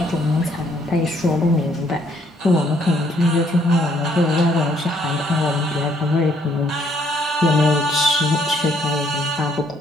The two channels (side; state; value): both; normal; correlation 0.67